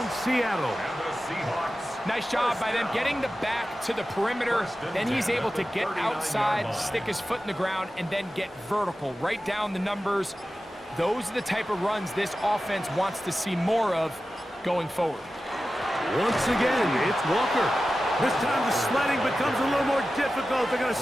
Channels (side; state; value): both; normal; correlation 0.94